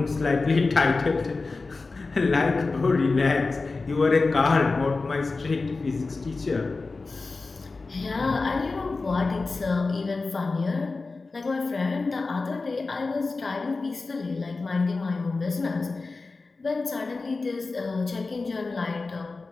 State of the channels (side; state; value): right; quieter; 3.8 dB